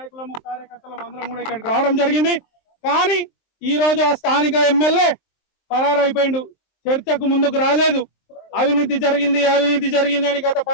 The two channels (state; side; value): late; right; 23 ms